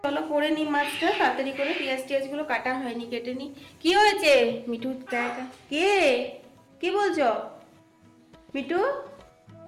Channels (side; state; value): both; identical; correlation 1.00